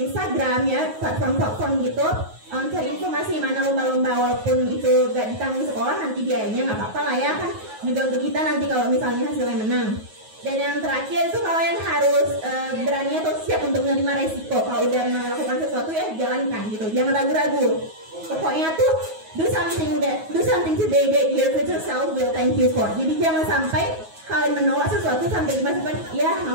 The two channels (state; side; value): late; left; 9.3 ms